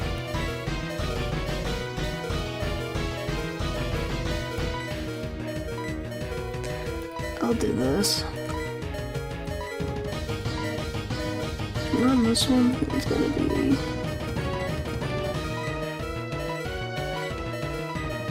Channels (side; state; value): both; identical; correlation 1.00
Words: I'll do this. And on this one, it's gonna be...